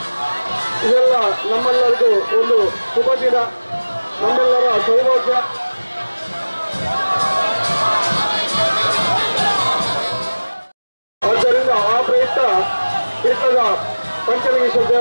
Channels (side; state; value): both; inverted; correlation -1.00